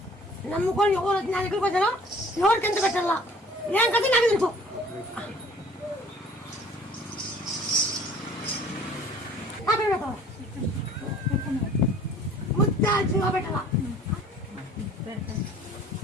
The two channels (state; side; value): normal; both; correlation 0.51